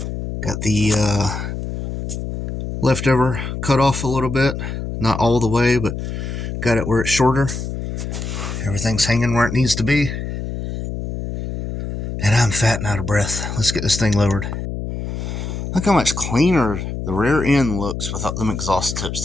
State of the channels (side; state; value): left; noise; hum, 5 dB below the sound